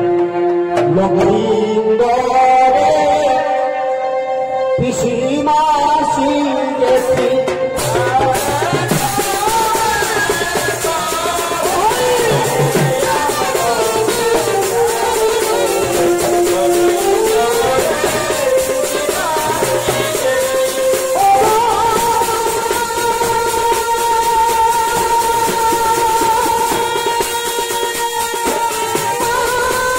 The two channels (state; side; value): identical; both; correlation 1.00